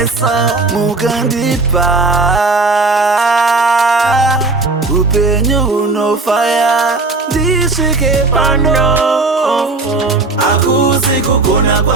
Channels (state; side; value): quieter; left; 3.6 dB